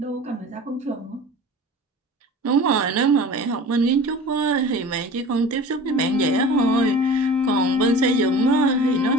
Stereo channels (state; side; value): normal; both; correlation 0.39